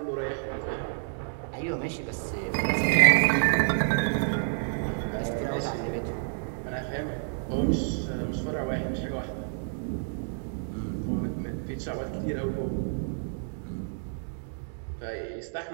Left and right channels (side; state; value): left; silent; digital silence